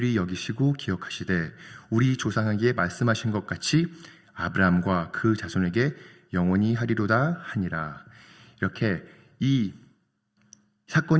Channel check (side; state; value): both; identical; correlation 1.00